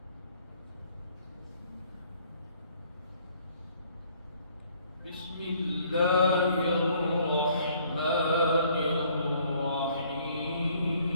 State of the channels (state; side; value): inverted; both; correlation -0.62